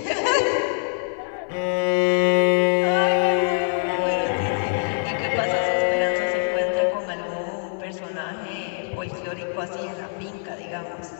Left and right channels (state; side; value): silent; right; 63 dB below the other